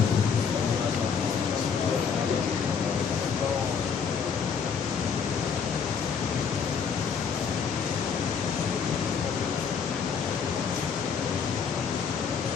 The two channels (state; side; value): quieter; right; 6.4 dB